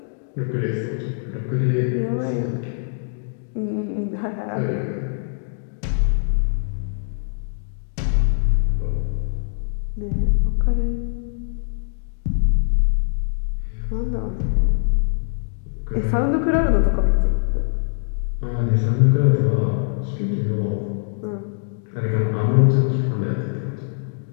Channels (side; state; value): right; silent; digital silence